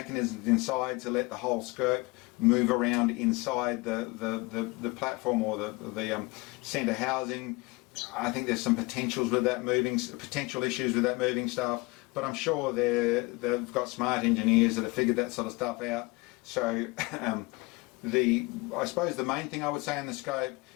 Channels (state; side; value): quieter; right; 24.7 dB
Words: inside to let the whole scope move around inside the platform or the centre housing. I think there's some potential issues with that moving stuff, but I'm sure they've got smart engineers that have figured that sort of stuff out. So I suppose the main thing I would say in the scope